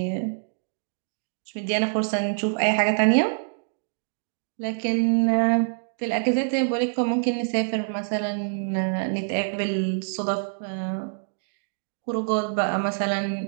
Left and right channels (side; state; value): left; silent; digital silence